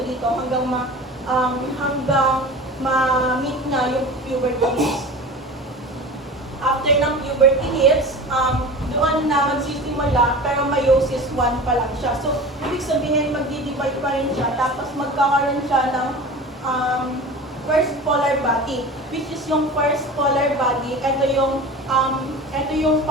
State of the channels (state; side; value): normal; both; correlation 0.35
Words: dito hanggang ma-meet niya yung puberty hits. After ng puberty hits, doon na magsisimula pero meiosis 1 pa lang siya. So, ibig sabihin magdi-divide pa rin siya tapos magkakaroon siya ng first polar body, which is yung first polar body, ito yung